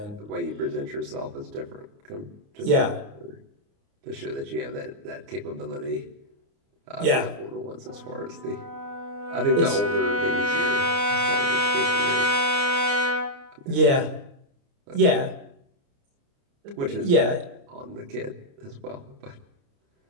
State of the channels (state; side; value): late; left; 29 ms